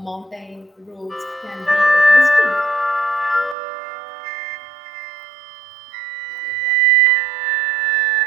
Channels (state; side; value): drops out; left; at 3.6 s